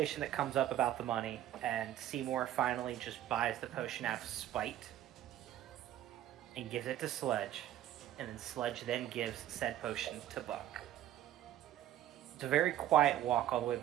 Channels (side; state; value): left; quieter; 12.4 dB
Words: that comes up about the money, and Seymour finally just buys the potion out of spite and gives it to Sledge, and then Sledge then gives said potion to Buck. It's a very quiet walk all the way